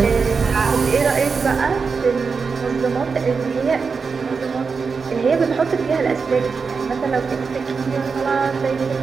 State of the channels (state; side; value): quieter; left; 5.1 dB